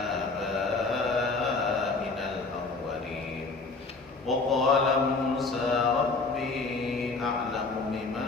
al-awwalin. Wa qala Musa rabbi a'lamu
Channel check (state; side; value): quieter; right; 3.9 dB